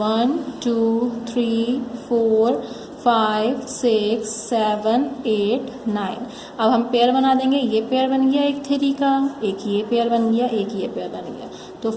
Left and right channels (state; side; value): identical; both; correlation 1.00